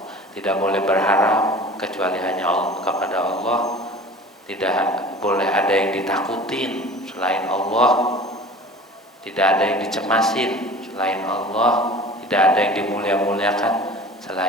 Tidak boleh berharap kecuali hanya Allah, kepada Allah. Tidak boleh ada yang ditakutin selain Allah. Tidak ada yang dicemasin selain Allah. Tidak ada yang dimulia-muliakan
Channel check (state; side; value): normal; both; correlation 0.41